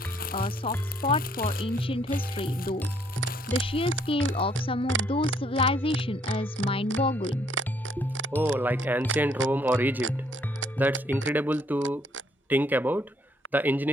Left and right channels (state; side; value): normal; both; correlation 0.67